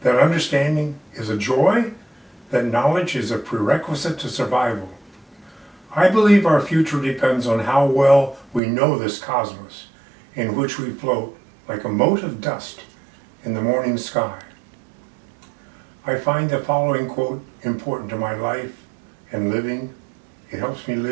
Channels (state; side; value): drops out; left; at 8.6 s